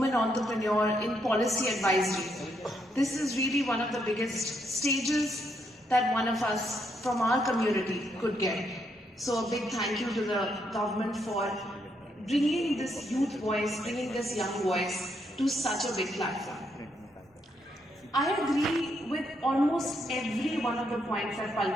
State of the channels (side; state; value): both; normal; correlation 0.77